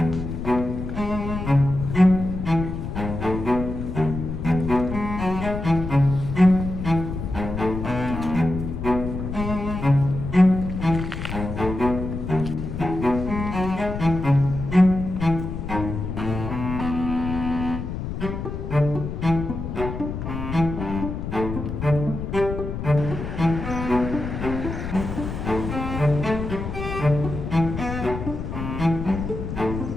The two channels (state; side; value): noise; left; rumble, 5 dB below the sound